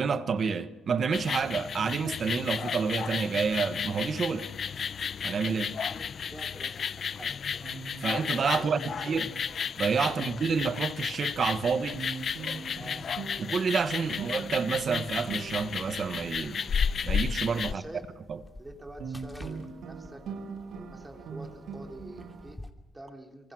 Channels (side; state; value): both; normal; correlation 0.79